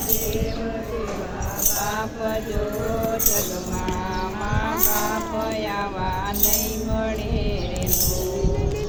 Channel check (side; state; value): both; identical; correlation 1.00